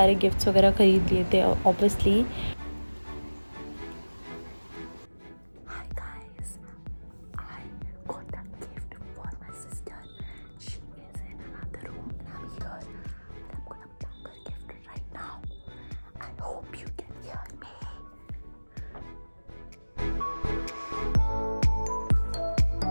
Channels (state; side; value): inverted; both; correlation -1.00